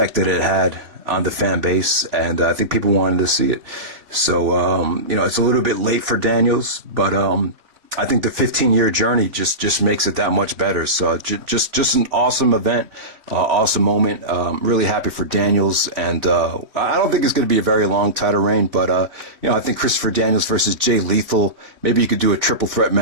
that it had on the fan base, and I think people wanted to see it. So, you know, it's a little bit late for Daniels, but I think the 15-year journey just makes it that much better. So just an awesome event, awesome moment. Really happy for Daniels, and I don't think it's going to be a very long title reign, but you know, I think Christopher Daniels versus Jay Lethal. Maybe you could do a triple threat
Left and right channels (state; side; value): late; left; 3.3 ms